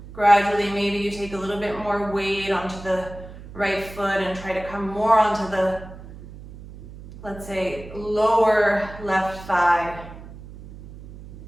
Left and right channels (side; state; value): right; noise; hum, 15 dB below the sound